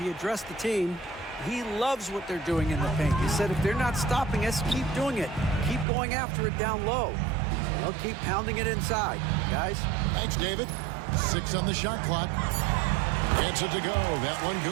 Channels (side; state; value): left; drops out; at 5.9 s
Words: addressed the team. He loves what they're doing in the paint. He said if they're not stopping us, keep doing it. Keep going after it down low. So they'll keep pounding it inside, guys. Thanks, David. 6 on the shot clock. Gets it to go. That one